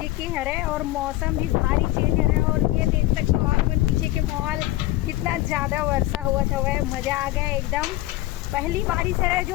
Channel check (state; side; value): quieter; right; 16.7 dB